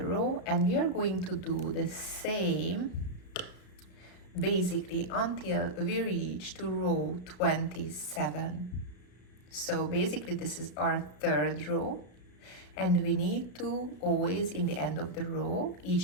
row, and we are going to do the same basically until we reach to row 27. So basically this is our third row, and we need to always in the end of the row,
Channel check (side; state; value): right; late; 33 ms